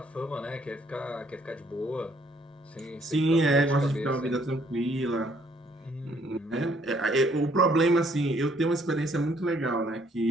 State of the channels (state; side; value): normal; both; correlation 0.65